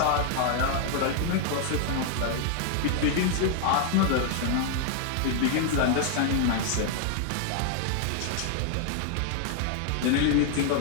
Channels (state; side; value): different; both; correlation 0.00